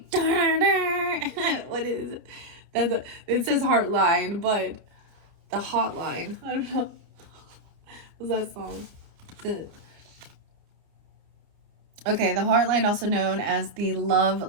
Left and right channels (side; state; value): left; late; 29 ms